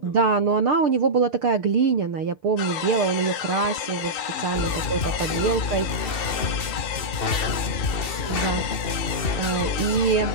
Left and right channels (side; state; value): right; late; 2.7 ms